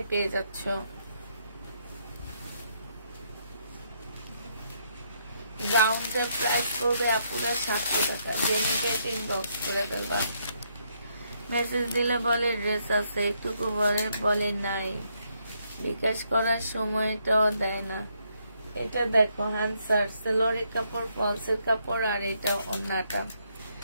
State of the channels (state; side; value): inverted; both; correlation -0.74